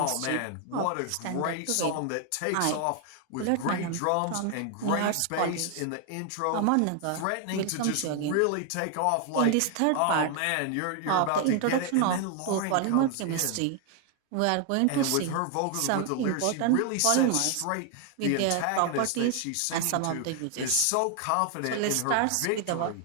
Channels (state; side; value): different; both; correlation 0.00